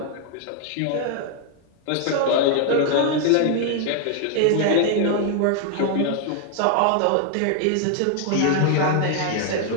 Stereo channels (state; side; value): different; both; correlation 0.00